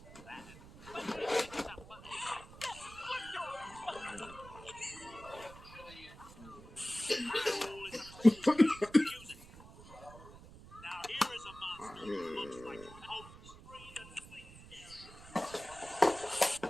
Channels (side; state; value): right; noise; rumble, 18 dB below the sound